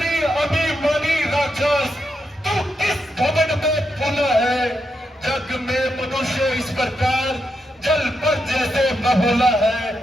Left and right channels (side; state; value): both; normal; correlation 0.83